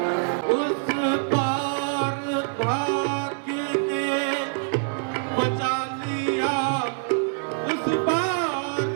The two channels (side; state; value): left; silent; 62 dB below the other